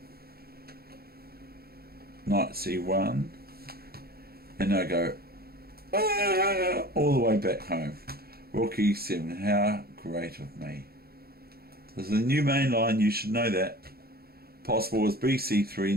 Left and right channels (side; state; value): left; late; 0.45 ms